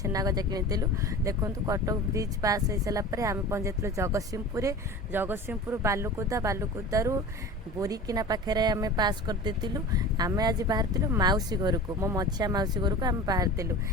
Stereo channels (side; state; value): both; normal; correlation 0.36